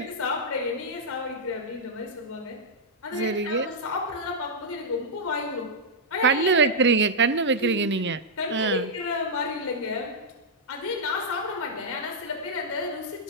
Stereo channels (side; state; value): both; normal; correlation -0.08